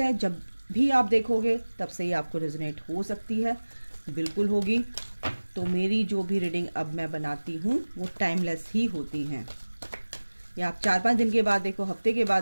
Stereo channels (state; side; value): inverted; both; correlation -1.00